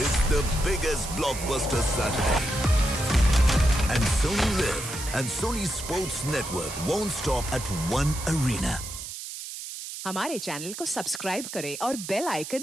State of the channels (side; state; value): right; noise; hiss, 9 dB below the sound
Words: the biggest blockbuster Saturday. And Sony Live and Sony Sports Network won't stop at one arena. हमारे channel को subscribe करें और bell